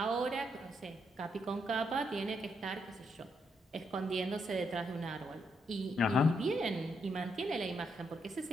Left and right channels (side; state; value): both; normal; correlation 0.78